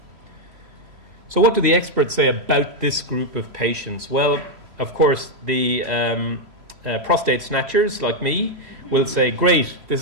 So what do the experts say about this group of patients? Well, of course, the prostate snatchers like me will say, great, this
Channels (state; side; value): late; left; 3.0 ms